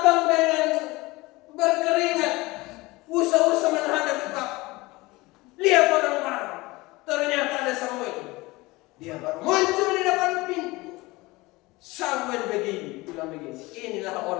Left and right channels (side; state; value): right; quieter; 21.7 dB